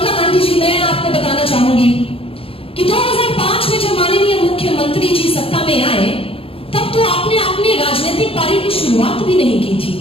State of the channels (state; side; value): late; right; 0.27 ms